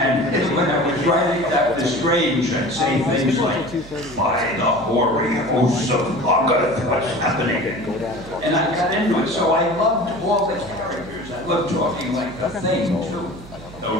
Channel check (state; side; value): noise; right; hum, 18 dB below the sound